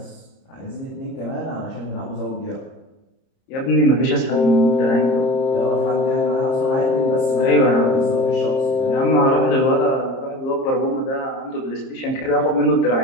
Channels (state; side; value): late; right; 30 ms